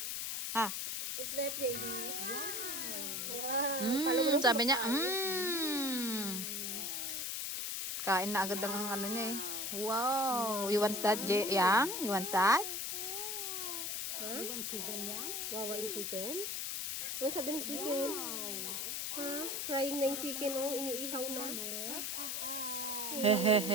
Ha? Is that JD? Wow. Sabi niya, Kain na agad ang niya eh. Wow. You want that, Yang? You want that? You want chicken yan? Wawain chicken? Ano sabi ng chicken? Ha? Frying na yung chicken, oh. Iniihaw na.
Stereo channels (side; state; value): left; noise; hiss, 2 dB below the sound